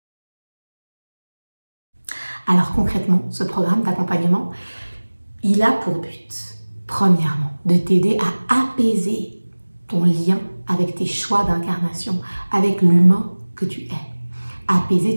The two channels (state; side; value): inverted; both; correlation -1.00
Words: Alors concrètement, ce programme d'accompagnement, il a pour but, premièrement, de t'aider à apaiser ton lien avec tes choix d'incarnation, avec l'humain que tu es.